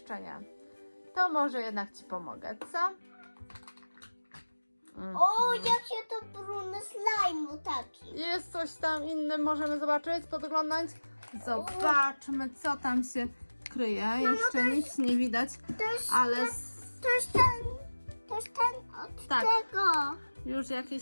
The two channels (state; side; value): inverted; both; correlation -1.00